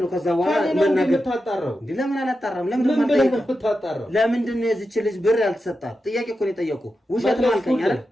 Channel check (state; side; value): normal; both; correlation 0.90